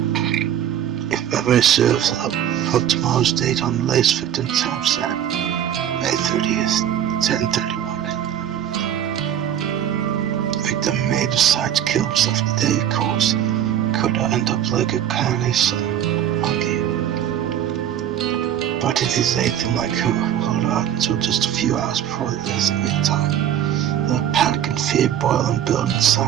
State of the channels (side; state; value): left; quieter; 10.2 dB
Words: If memory serves, I'll put tomorrow's date on the latest victim timestamp, May 30th, 10:31. Victim may decide to kill himself today, of course. Could I end up like a carnage monkey? But if he's anything like her, hold on until just a few hours before the designated time. The panic and fear boil and build